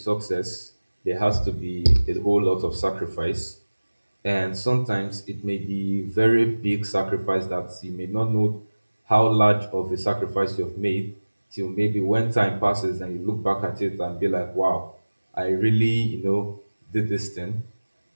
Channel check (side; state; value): both; inverted; correlation -1.00